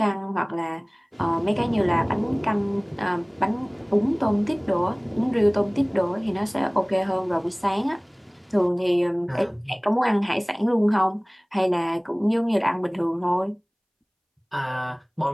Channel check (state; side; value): identical; both; correlation 1.00